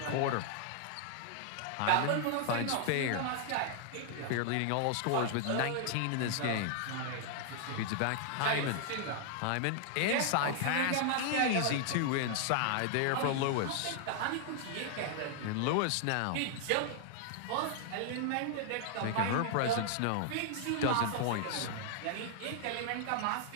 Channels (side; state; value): both; different; correlation 0.00